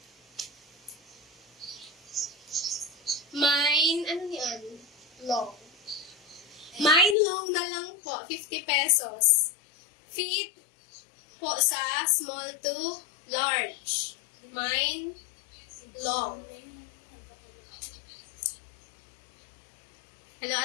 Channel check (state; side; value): drops out; right; at 7.2 s